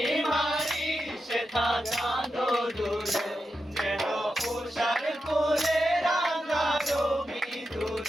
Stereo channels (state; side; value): normal; both; correlation 0.88